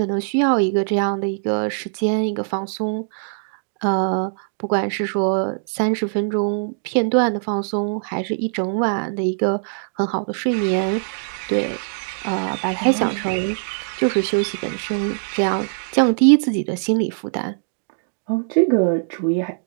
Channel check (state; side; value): silent; left; digital silence